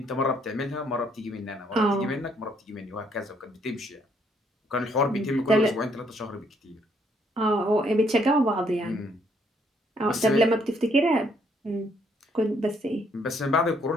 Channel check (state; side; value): normal; both; correlation 0.69